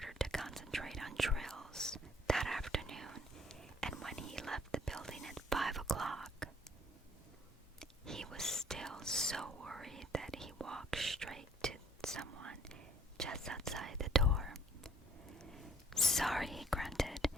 to concentrate on drills that afternoon, and when he left the building at 5 o'clock, he was still so worried that he walked straight to someone just outside the door. Sorry, he grunted,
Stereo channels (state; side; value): normal; both; correlation 0.60